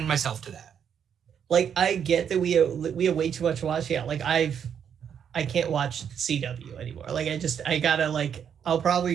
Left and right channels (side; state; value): left; quieter; 8.1 dB